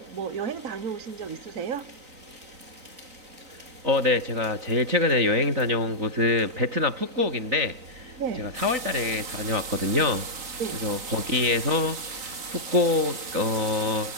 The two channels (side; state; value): left; late; 3.9 ms